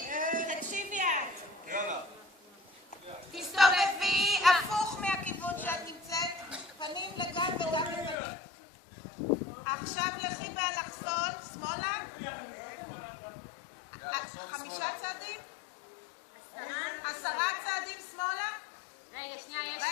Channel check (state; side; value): drops out; right; at 8.2 s